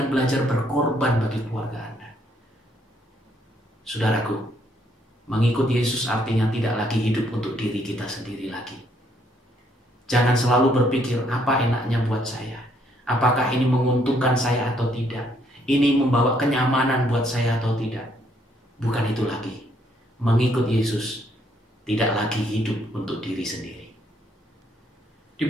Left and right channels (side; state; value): both; normal; correlation 0.69